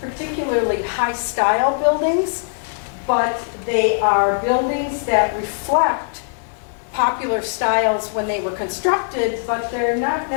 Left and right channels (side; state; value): right; silent; 65 dB below the other